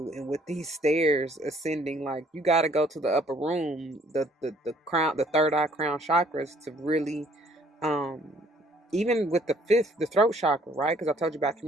And with these stairs ascending, like, you got to go to the upper room, the crown, the third eye crown chakras, to really um even with the fifth, the throat chakra, right? Because I told you about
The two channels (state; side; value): normal; both; correlation 0.61